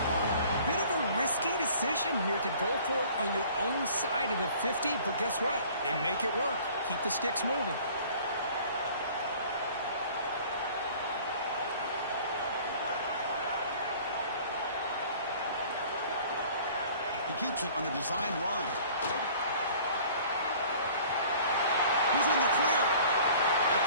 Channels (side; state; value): both; inverted; correlation -0.50